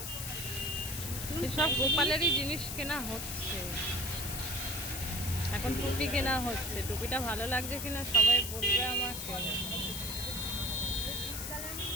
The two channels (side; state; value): left; noise; hiss, 6 dB below the sound